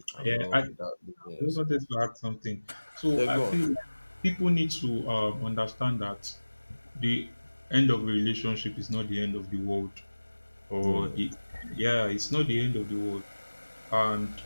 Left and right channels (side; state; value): both; inverted; correlation -1.00